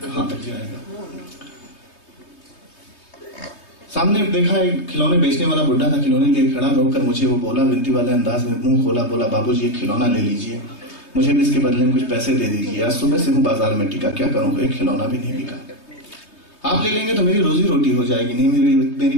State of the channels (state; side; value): late; right; 3.2 ms